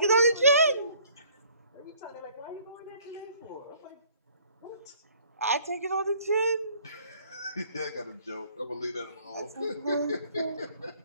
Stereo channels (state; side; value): inverted; both; correlation -0.57